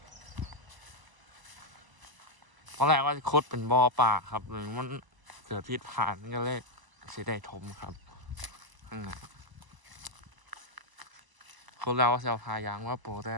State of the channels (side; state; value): left; late; 1.0 ms